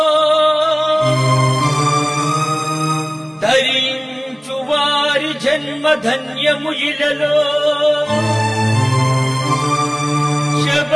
ధరించు వారి జన్మ ధన్యము ఇలలో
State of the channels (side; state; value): both; identical; correlation 1.00